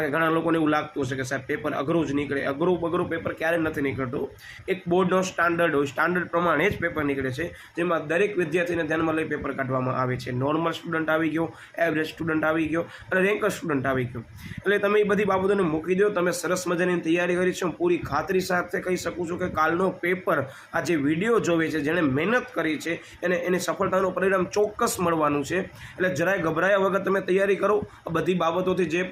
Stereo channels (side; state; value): both; identical; correlation 1.00